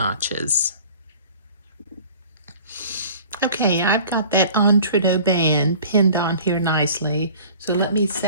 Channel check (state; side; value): inverted; both; correlation -0.46